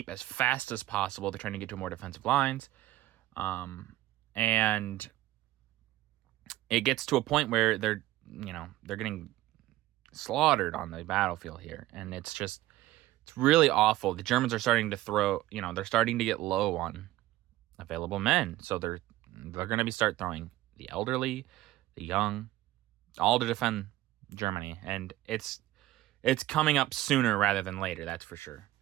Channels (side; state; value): left; quieter; 16.0 dB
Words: as fast as possible. They're trying to get to more defensive lines. And it gets to a point where they're getting slaughtered on the battlefield here. And it's really awful. The Germans are starting to they're starting to get low on available men. So they're going to start throwing the elderly, the young, all to defend Germany. And it's coming up sooner rather than later, that's for sure.